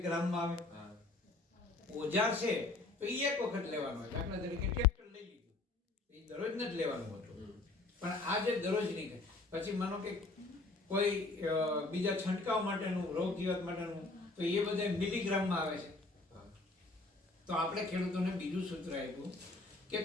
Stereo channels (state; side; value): quieter; right; 3.2 dB